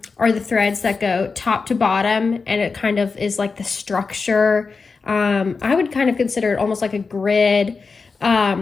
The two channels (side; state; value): right; quieter; 4.7 dB